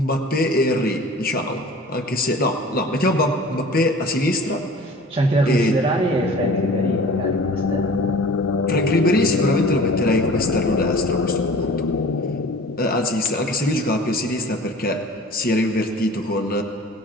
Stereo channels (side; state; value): both; normal; correlation 0.43